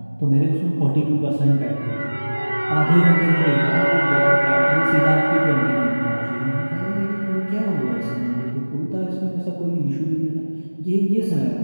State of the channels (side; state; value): both; inverted; correlation -1.00